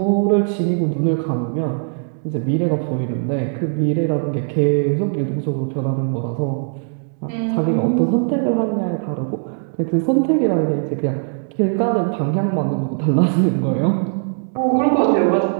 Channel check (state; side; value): silent; left; digital silence